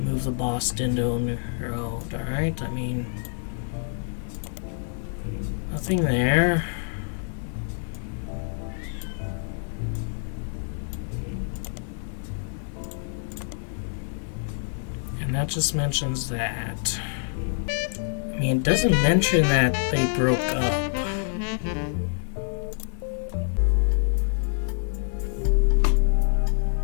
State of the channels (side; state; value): right; silent; 61 dB below the other